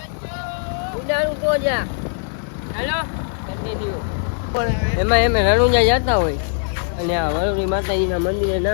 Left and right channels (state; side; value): silent; right; 65 dB below the other